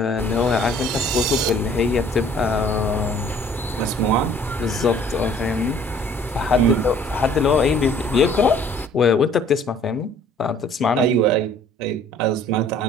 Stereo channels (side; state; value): both; normal; correlation 0.55